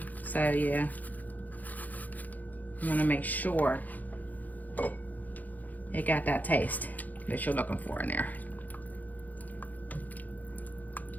so yeah. You want to make sure it got that taste that you're looking for in there.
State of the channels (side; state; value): right; late; 0.081 ms